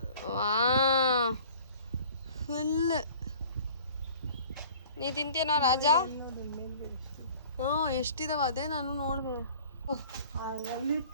ವಾ ಫುಲ್. ನೀ ತಿಂತೀನೋ ರಾಜ? ಎಷ್ಟಿದಾವ ಅದೇ ನಾನು ನೋಡ್ದೆ.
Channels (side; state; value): both; inverted; correlation -0.48